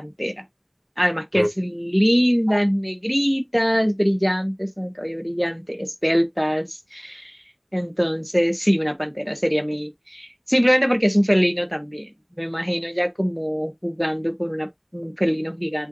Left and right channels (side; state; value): both; identical; correlation 1.00